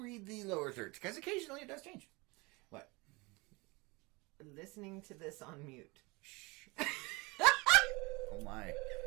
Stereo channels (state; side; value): quieter; left; 25.5 dB